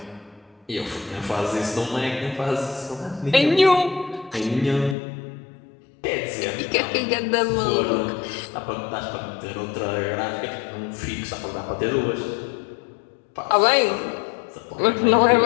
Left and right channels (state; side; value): drops out; right; at 5.0 s